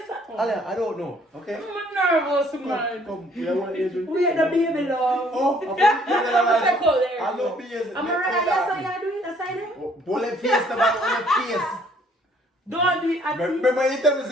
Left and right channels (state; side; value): normal; both; correlation 0.61